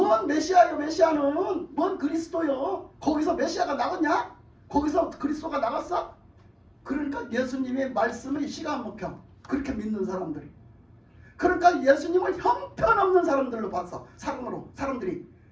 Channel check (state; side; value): identical; both; correlation 1.00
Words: 메시아요? 메시아는 뭔 그리스도요? 거기서 메시아가 나갔냐? 거기서 그리스도가 나갔어? 그러니까 예수님의 말씀을 시가 안 먹혀. 그렇게 믿는 사람들이. 그러니까 예수님을 형편없는 사람들로 봤어. 사람들이.